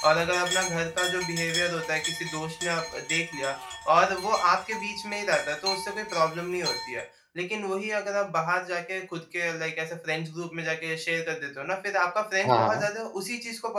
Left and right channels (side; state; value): both; identical; correlation 1.00